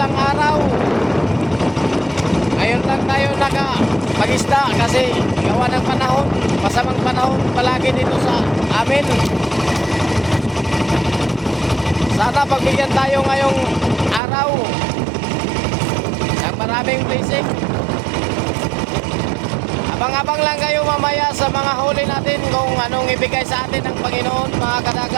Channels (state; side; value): drops out; left; at 14.2 s